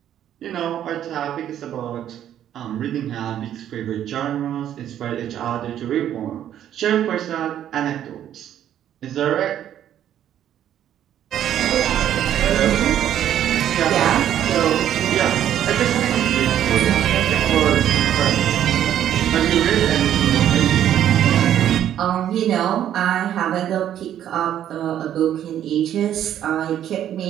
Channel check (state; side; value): quieter; left; 10.8 dB